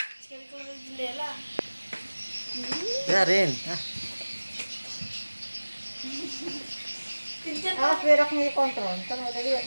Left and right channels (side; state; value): both; inverted; correlation -1.00